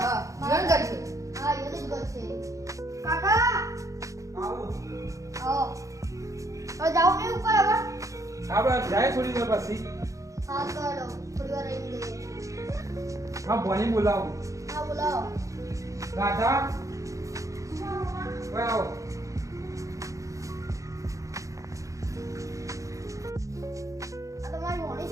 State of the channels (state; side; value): late; left; 0.15 ms